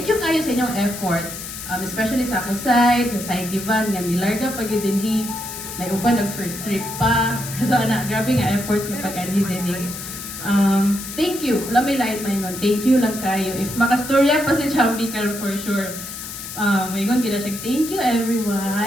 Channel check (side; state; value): left; noise; hiss, 9 dB below the sound